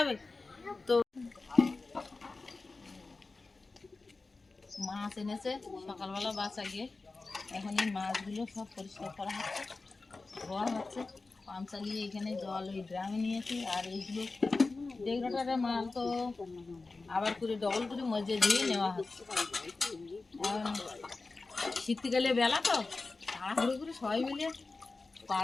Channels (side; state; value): right; quieter; 3.7 dB